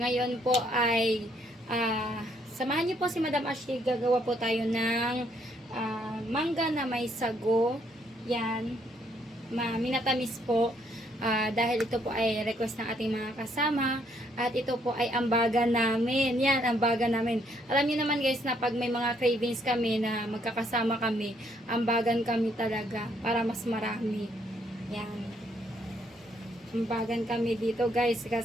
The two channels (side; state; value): both; normal; correlation 0.70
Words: po ay samahan niyo po si Madam Ashley. Gagawa po tayo ng mangga na may sago. Yan. Minatamis po. Dahil ito po ay request ng ating mga kasama. At ito po ay ambagan namin. Yan, ambagan namin. Alam niyo naman guys na pag may mga cravings kami na magkakasama kami, ambagan kami talaga para mas marami. Yan. Ambagan kami dito guys